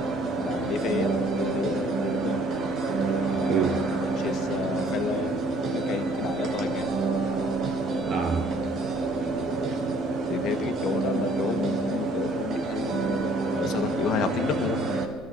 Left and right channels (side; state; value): both; normal; correlation 0.59